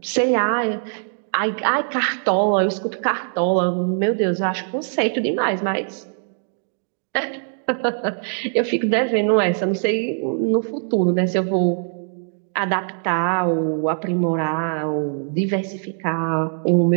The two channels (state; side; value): silent; left; 64 dB below the other